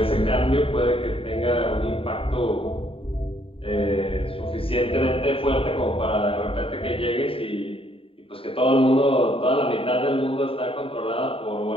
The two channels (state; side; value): late; right; 0.27 ms